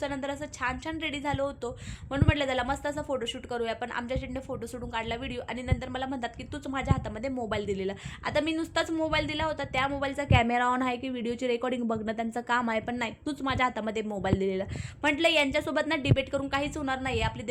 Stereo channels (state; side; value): identical; both; correlation 1.00